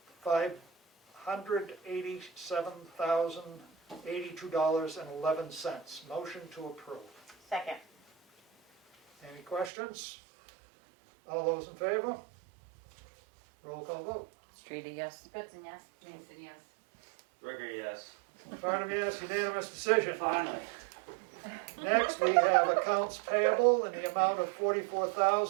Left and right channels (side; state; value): left; drops out; at 9.7 s